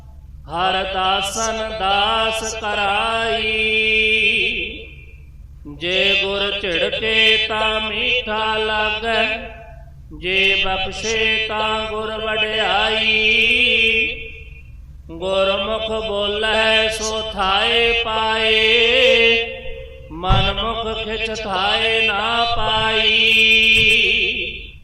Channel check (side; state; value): both; identical; correlation 1.00